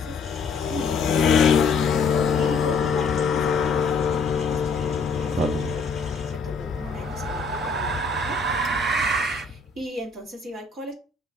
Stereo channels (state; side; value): quieter; right; 4.3 dB